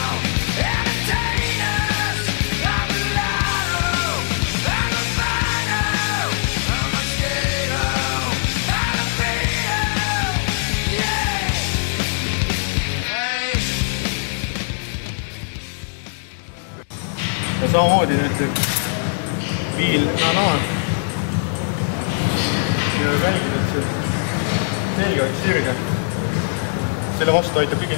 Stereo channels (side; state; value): right; silent; digital silence